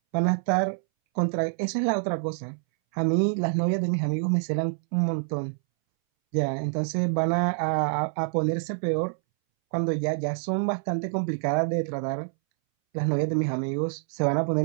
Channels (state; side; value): silent; left; 61 dB below the other